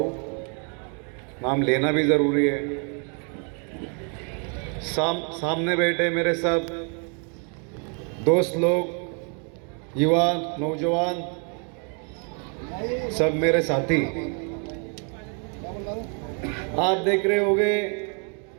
नाम लेना भी ज़रूरी है। सामने बैठे मेरे सब दोस्त लोग, युवा नौजवान, सब मेरे साथी, आप देख रहे होंगे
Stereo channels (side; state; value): left; quieter; 39.5 dB